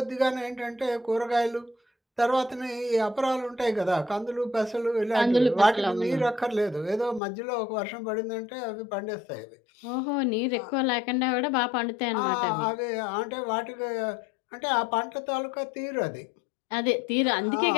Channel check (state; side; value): drops out; right; at 7.2 s